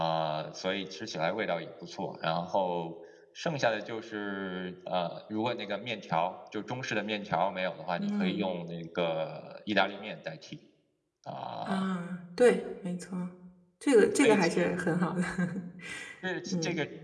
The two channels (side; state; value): both; identical; correlation 1.00